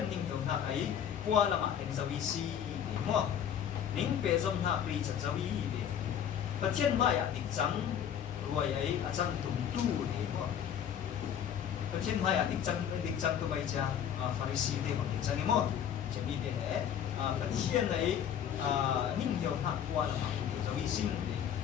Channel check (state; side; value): quieter; right; 9.1 dB